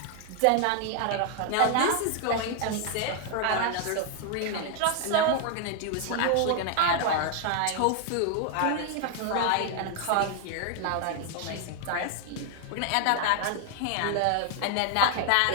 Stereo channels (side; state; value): both; different; correlation 0.00